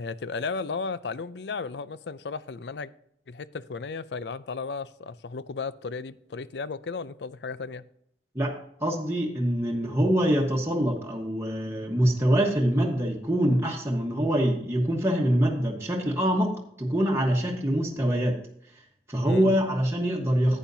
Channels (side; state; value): both; normal; correlation 0.78